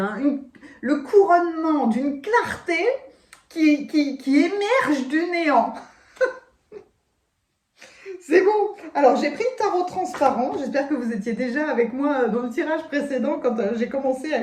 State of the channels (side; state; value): both; identical; correlation 1.00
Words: Le couronnement d'une clarté qui émerge du néant. C'est bon. Alors, j'ai pris le tarot transparent. J'espère que vous étiez déjà avec moi dans le tirage précédent quand j'ai commencé à